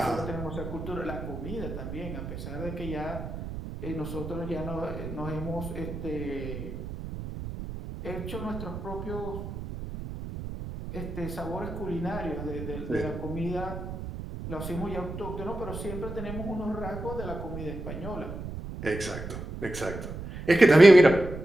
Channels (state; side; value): noise; right; rumble, 8 dB below the sound